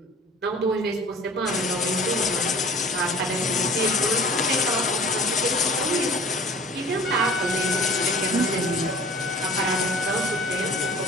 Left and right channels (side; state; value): both; normal; correlation 0.45